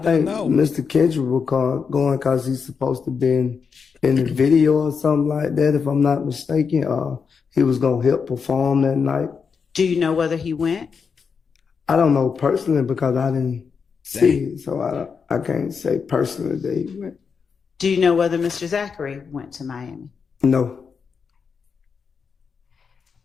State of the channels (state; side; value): quieter; right; 5.8 dB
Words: think know. Mr. Kendrick will going because he's supposed to be in the video or something like that, if I'm not mistaken. He was going to help perform that night. Do you know whether he went? I don't know personally because I didn't see it, so I can't say personally that he went. Do you know whether Mr. Zachary went to Miami? No.